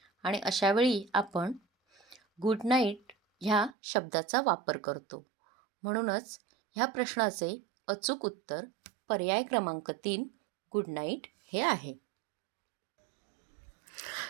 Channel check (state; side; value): drops out; left; at 3.8 s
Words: आणि अशावेळी आपण गुड नाईट ह्या शब्दाचा वापर करतो. म्हणूनच ह्या प्रश्नाचे अचूक उत्तर पर्याय क्रमांक 3 गुड नाईट हे आहे.